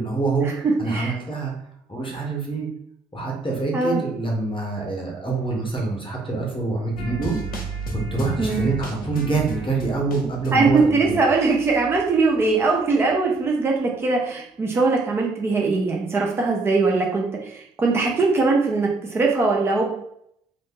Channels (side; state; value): left; quieter; 3.3 dB